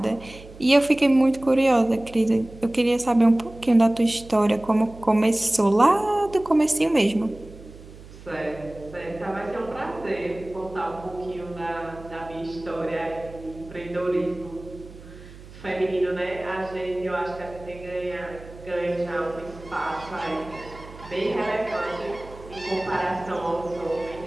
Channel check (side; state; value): right; noise; hum, 18 dB below the sound